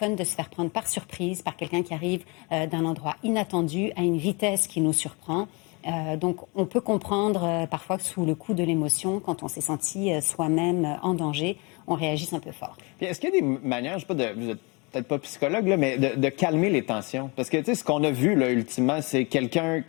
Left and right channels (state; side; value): quieter; right; 29.1 dB